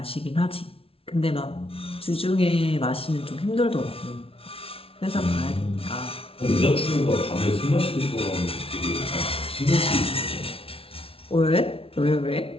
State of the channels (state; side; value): late; right; 0.27 ms